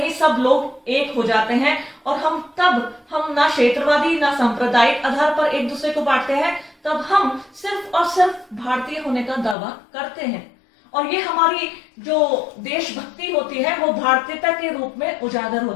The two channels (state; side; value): drops out; right; at 9.6 s